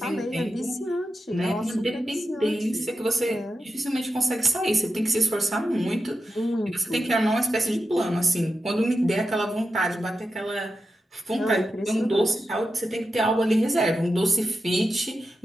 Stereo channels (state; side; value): normal; both; correlation 0.89